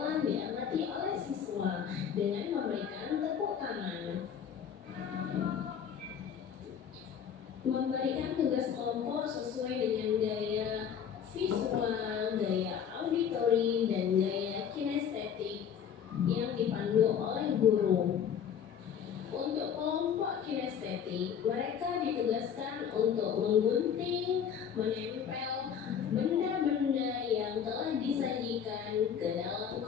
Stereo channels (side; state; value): right; quieter; 8.1 dB